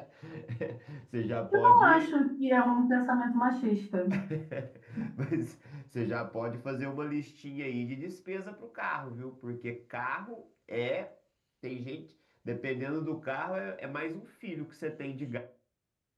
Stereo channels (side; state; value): both; identical; correlation 1.00